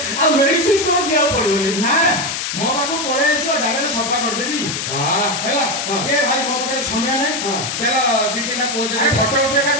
ଆଉ ମେଡିସିନ ଷ୍ଟୋର ଯିବାକୁ ପଡିବନି ନା ମୋ ପାଖକୁ ପଳେଇ ଆସିବ ଡାଇରେକ୍ଟ ସଫା କରିଦେବି ହେଲା ଏ ଭାଇ ମୋ ପାଖରେ ସମୟ ନାହିଁ ଦେଲ 2-3ଟା ପୋଜ ଫଟୋ ଉଠେଇବା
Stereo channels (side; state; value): left; noise; hiss, 3 dB below the sound